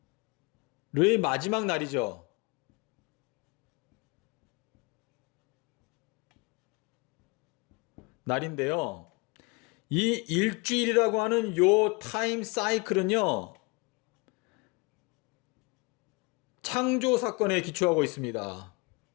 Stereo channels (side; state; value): right; quieter; 28.6 dB